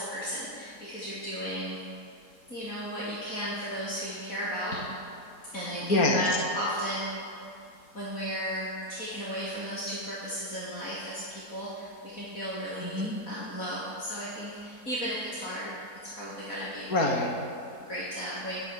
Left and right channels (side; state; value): right; late; 4.3 ms